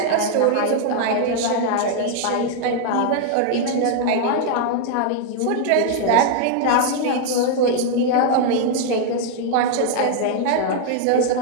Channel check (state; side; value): different; both; correlation 0.00